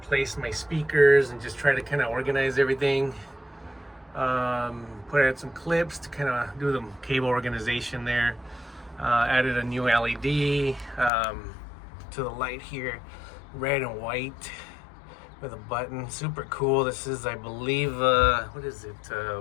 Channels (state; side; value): drops out; right; at 11.1 s